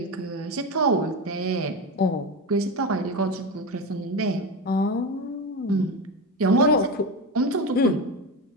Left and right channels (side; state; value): both; normal; correlation 0.19